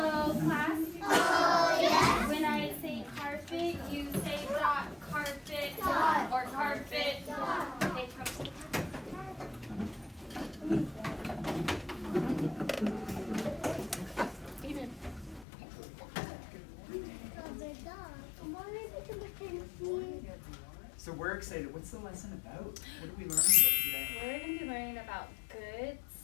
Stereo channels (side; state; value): right; drops out; at 15.5 s